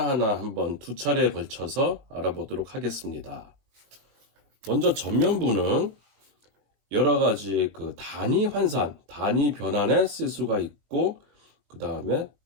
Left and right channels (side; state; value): left; late; 21 ms